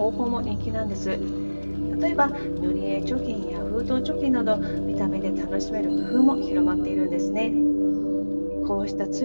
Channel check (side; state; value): both; inverted; correlation -1.00